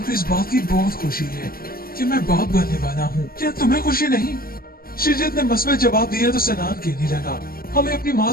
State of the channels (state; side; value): late; right; 0.43 ms